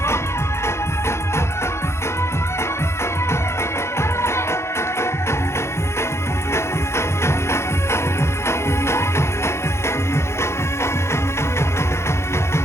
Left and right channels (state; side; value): late; right; 0.13 ms